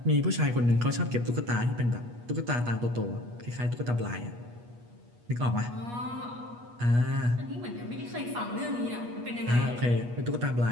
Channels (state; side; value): late; left; 8.3 ms